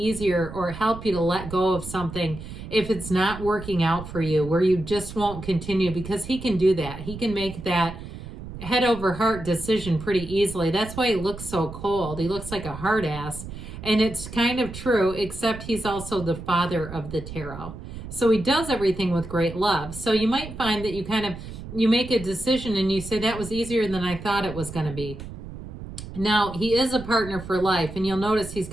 or help you to let go of something if it's not working out for you, where you just won't continue, because he can do that. He can make that head over heart decision pretty easily. That's why he looks so cold. He looks like a hard ass. And it's kind of true, except he's also the father of the tarot. So he does everything with great love. So you might find that you make a decision and you say, that was easier than I thought it was going to be. Now, he is a partner for life. And you'll notice he's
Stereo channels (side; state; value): right; noise; rumble, 11 dB below the sound